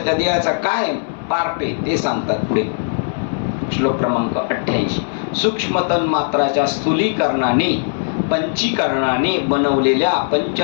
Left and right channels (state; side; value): silent; right; 61 dB below the other